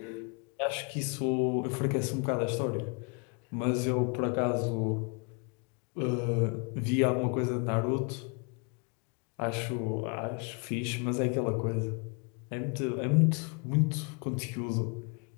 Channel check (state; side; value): quieter; right; 35.3 dB